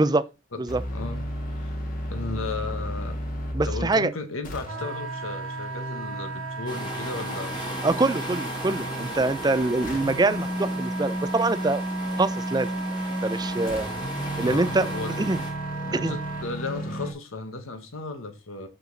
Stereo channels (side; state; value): both; normal; correlation 0.53